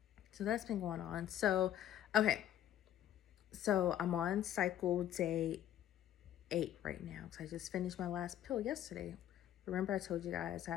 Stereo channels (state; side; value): quieter; right; 11.4 dB